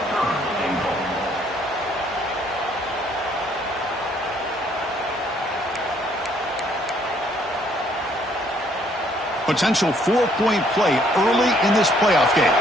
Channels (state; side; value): normal; both; correlation 0.65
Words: Potential 4-point play early in this playoff game.